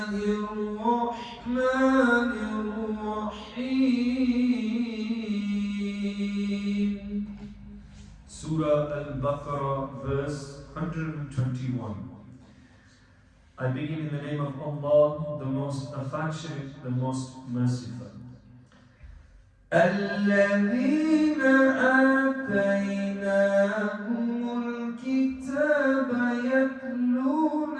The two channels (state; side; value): identical; both; correlation 1.00